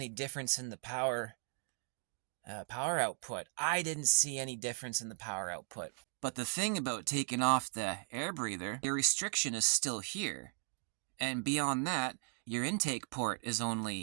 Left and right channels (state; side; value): silent; left; 53 dB below the other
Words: difference in the power output. I didn't see any difference in the power output. But the thing about taking off the air breather, your restriction is still here. And beyond that, your intake port is